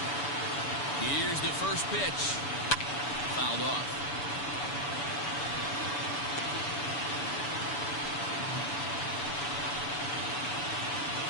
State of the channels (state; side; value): late; right; 6.9 ms